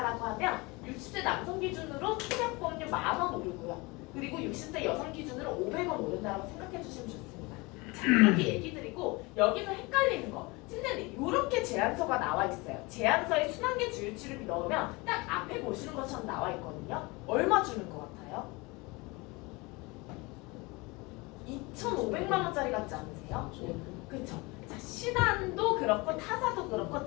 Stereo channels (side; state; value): right; quieter; 25.2 dB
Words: 하면 60세 남성 기준으로 소액보험료 10,000원 오르고요. 그리고 60세 여성 기준으로 500원 오른다라고 생각해 주시면 좋습니다. 자, 이렇게 얘기 드리고 여기서 헷갈리는 거 선생님 이렇게 제안서가 나와 있어요. 제안서에 순환계 주요치료비 넣으면 딱 앞에 보시는 것처럼 나와 있거든요. 얼마 주는 것 같아요? 2,500만 원짜리 같지 않으세요? 그쵸? 자, 신한도 그렇고 타사도 그렇고